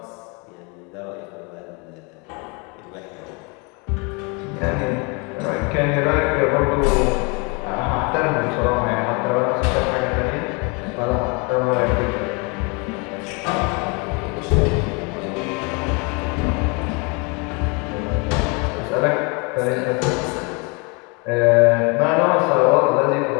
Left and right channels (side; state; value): right; quieter; 31.3 dB